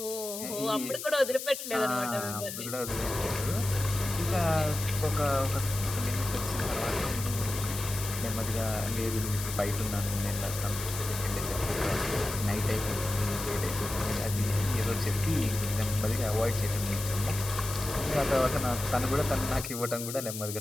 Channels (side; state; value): left; noise; hiss, 7 dB below the sound